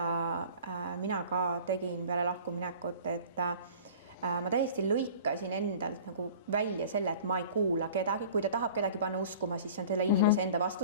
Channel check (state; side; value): inverted; both; correlation -0.44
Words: mina ka tegin peale lahkuminekut, et ma täiesti lõikasin endalt nagu välja selle, et ma ei kuula kedagi, kui ta tahab kedagi panna uskuma, siis on selle inimese enda